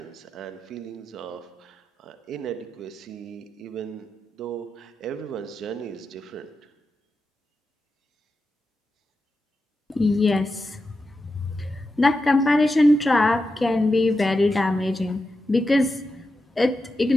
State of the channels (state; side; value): normal; both; correlation 0.89